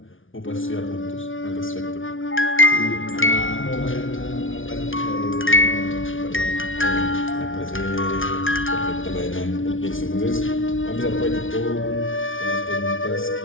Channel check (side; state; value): right; late; 0.57 ms